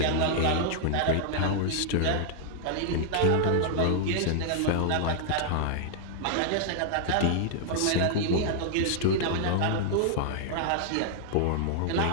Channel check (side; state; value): both; different; correlation -0.01